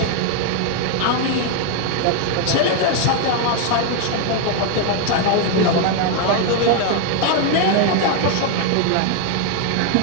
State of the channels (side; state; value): both; different; correlation 0.01